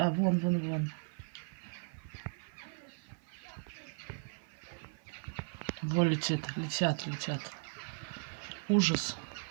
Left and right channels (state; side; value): silent; left; 53 dB below the other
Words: А, вон, вон, вон. Вон летит, летят, летят. Ужас.